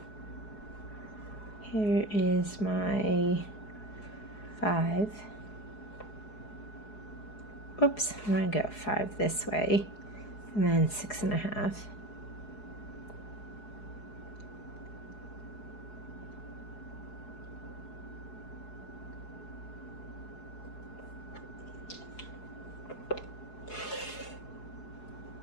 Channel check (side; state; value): right; late; 4.8 ms